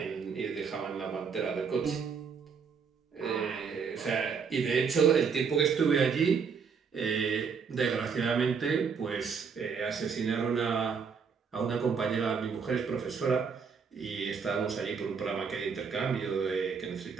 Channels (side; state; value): left; quieter; 5.9 dB